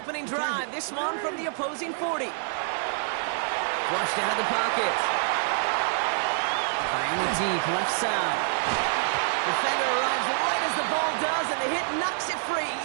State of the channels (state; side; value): silent; left; digital silence